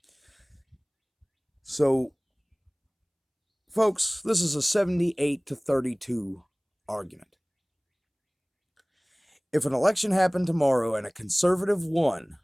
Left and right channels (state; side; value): identical; both; correlation 1.00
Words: So, folks, this is a 78-32 argument. If an election happened tomorrow and a conservative won